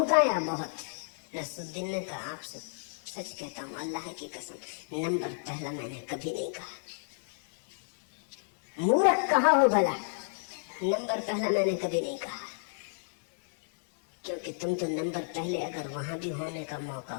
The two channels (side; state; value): right; silent; digital silence